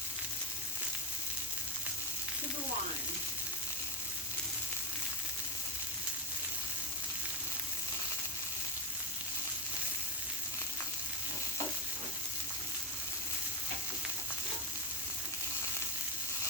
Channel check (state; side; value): normal; both; correlation 0.15